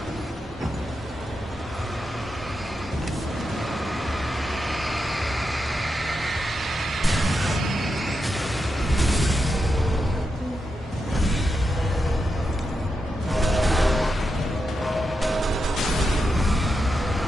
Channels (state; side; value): normal; both; correlation 0.86